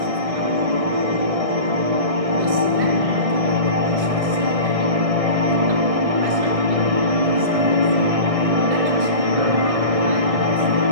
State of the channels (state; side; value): late; left; 1.6 ms